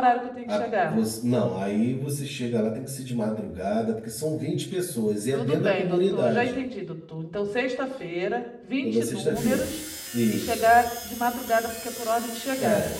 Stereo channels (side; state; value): both; identical; correlation 1.00